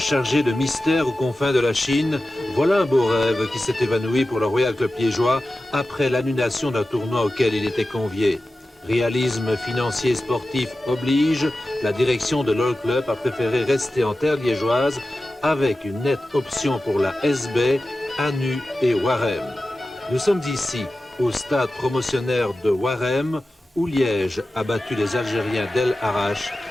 de mystères aux confins de la Chine, voilà un beau rêve qui s'est évanoui pour le Royal Club liégeois après l'annulation d'un tournoi auquel il était convié. Réalisme financier et sportif oblige, la direction de l'All Club a préféré rester en terre liégeoise avec une nette option pour la SB, Anu et Warem. Nous sommes ici, au stade promotionnaire de Warem, où Liège a battu les Algériens d'El Arach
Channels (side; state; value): both; normal; correlation 0.94